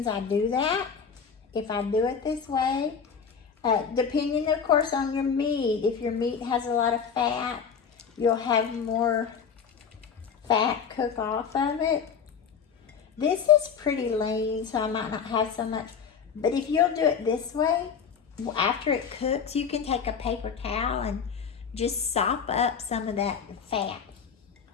I do that. If I do it this way, depending of course on your meat, if your meat has a lot of fat, you'll have more fat cook off of it. This is pretty lean, so I might not have so much, but if you'll do it this way, after it cooks, you can take a paper towel and just sop up some of that fat.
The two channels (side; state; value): right; quieter; 6.6 dB